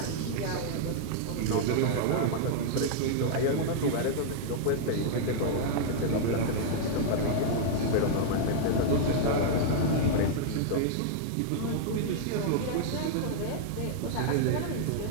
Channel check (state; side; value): different; both; correlation -0.01